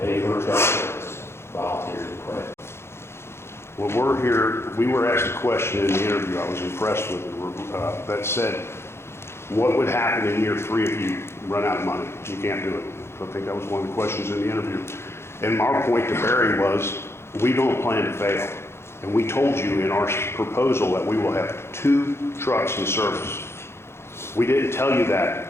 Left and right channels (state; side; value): late; right; 0.12 ms